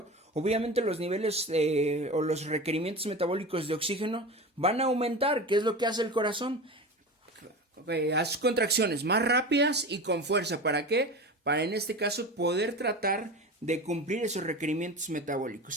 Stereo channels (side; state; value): both; normal; correlation 0.29